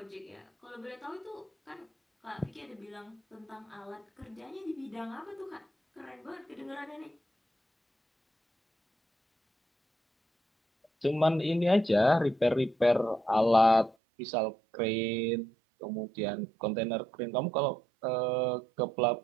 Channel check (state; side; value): drops out; left; at 14.0 s